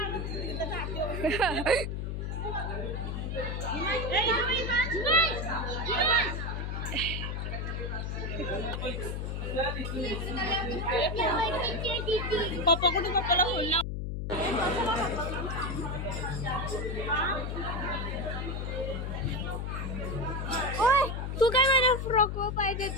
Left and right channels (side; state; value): left; noise; hum, 3 dB below the sound